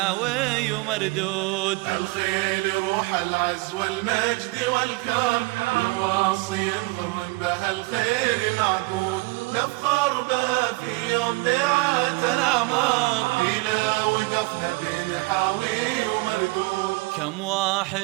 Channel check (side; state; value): left; quieter; 24.6 dB